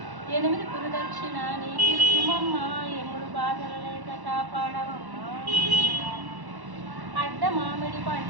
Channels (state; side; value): late; left; 1.1 ms